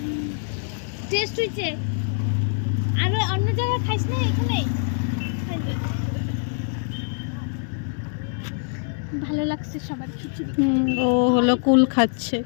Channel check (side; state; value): right; silent; digital silence